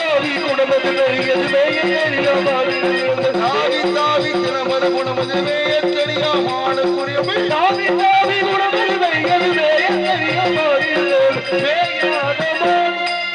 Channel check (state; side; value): identical; both; correlation 1.00